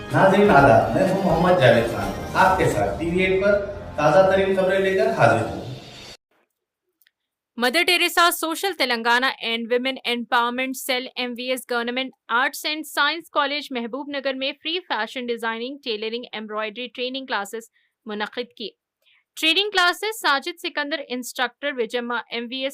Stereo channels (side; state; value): both; identical; correlation 1.00